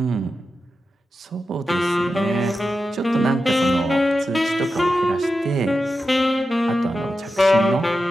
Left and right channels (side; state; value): both; normal; correlation 0.91